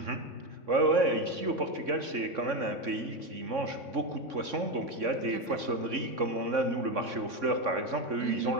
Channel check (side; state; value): left; late; 3.6 ms